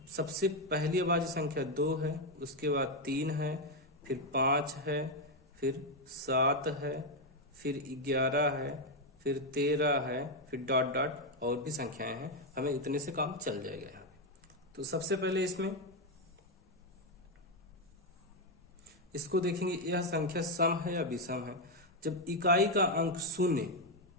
सबसे पहली अभाज्य संख्या 2 है, उसके बाद 3 है, फिर 5 है, फिर 7 है, फिर 11 है, फिर 13 है, फिर डॉट डॉट और भी संख्याएं हैं। हमें इतने से काम चल जाएगा यहाँ पे। तो सबसे पहले इसको देखेंगे, यह संख्या सम है या विषम है। जब इकाई का अंक 0,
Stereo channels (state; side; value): normal; both; correlation 0.04